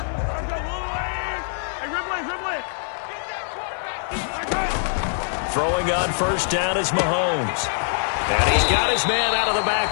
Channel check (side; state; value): right; silent; digital silence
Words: Throwing on first down is Mahomes. And he's got his man out of the